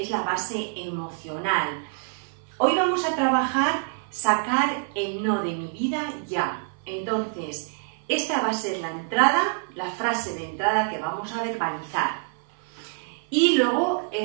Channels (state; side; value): silent; left; 56 dB below the other